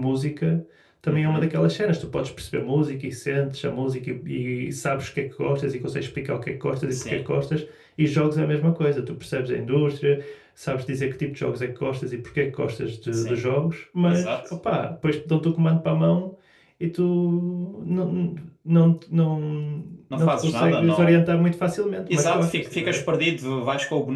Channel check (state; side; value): identical; both; correlation 1.00